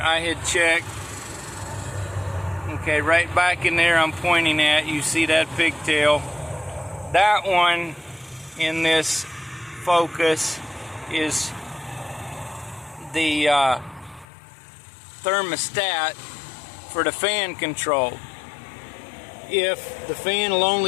I had checked. Okay, right back in there I'm pointing at, you see that pigtail. That one in this Focus is the thermostat for the fan control. If the fan will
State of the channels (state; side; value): drops out; right; at 14.2 s